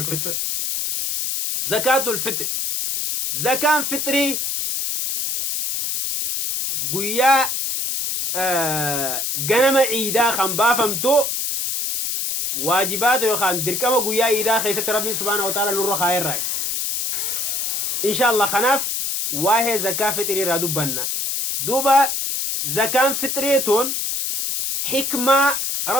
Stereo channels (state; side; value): noise; left; hiss, 1 dB below the sound